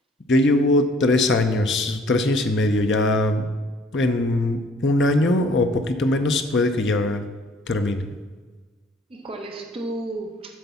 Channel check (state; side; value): normal; both; correlation 0.57